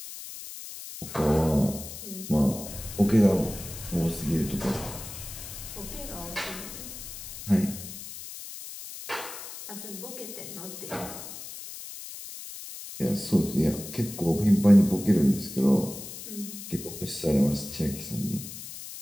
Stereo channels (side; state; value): left; noise; hiss, 11 dB below the sound